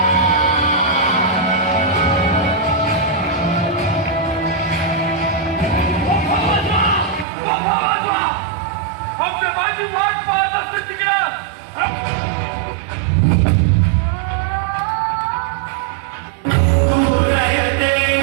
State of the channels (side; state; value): left; drops out; at 7.2 s